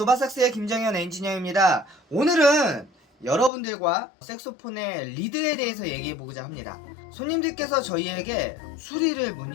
김정현 엔지니어입니다. 오늘은 여러분들과 색소폰의 리드에 대해서 얘기해보고자 합니다. 손님들께서 저희에게 수리를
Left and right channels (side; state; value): right; drops out; at 3.5 s